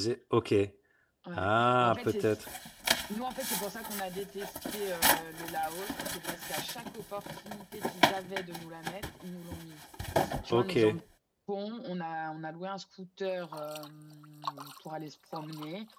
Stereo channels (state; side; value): identical; both; correlation 1.00